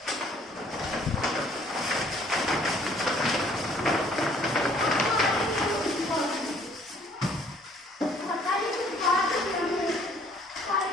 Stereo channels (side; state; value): both; normal; correlation 0.59